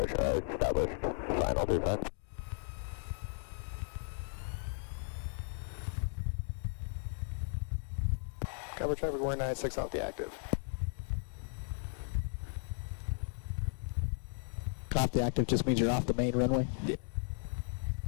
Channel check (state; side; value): silent; right; digital silence